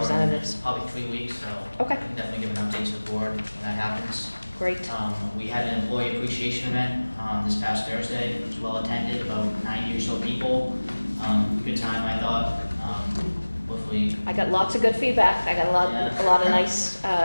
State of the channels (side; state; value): both; inverted; correlation -1.00